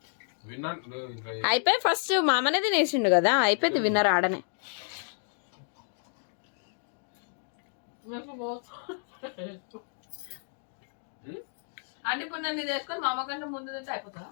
అయిపోయి ఫస్ట్ మామనే తినేసిండు కదా, అయిపోయింది. విన్నర్ ఆడనే. అంటే ఇప్పుడు నన్ను ఇది వేసుకొని మా అమ్మ కంటే ముందు తింటే అయిపోతుందా?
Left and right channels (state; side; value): silent; right; 58 dB below the other